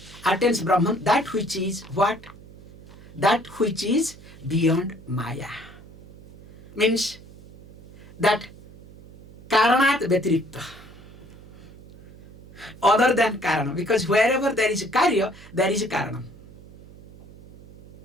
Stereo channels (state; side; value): noise; right; hum, 19 dB below the sound